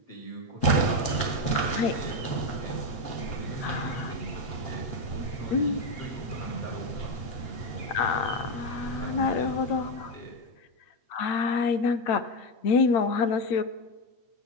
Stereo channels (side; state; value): right; late; 8.2 ms